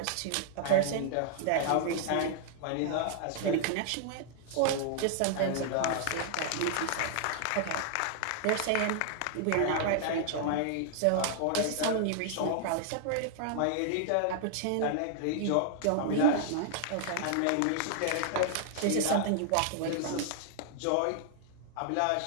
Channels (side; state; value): both; different; correlation -0.01